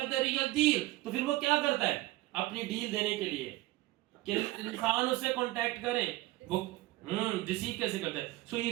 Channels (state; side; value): quieter; left; 18.7 dB